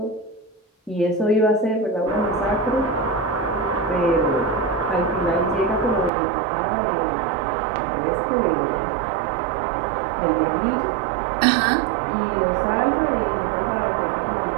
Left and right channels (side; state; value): left; drops out; at 6.1 s